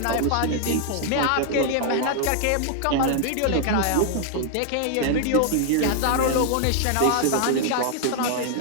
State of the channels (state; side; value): different; both; correlation 0.00